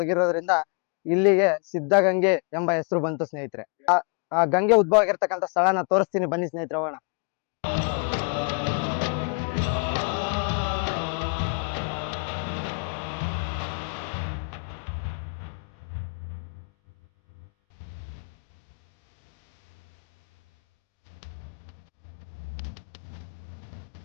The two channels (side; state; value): right; quieter; 38.6 dB